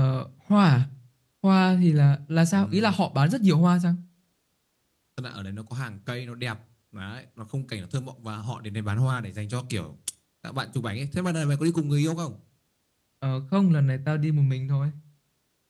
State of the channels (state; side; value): identical; both; correlation 1.00